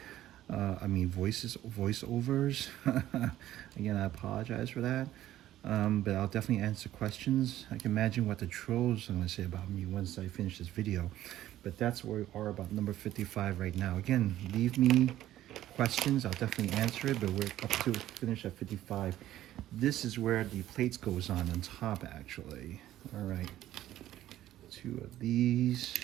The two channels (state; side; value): quieter; left; 13.5 dB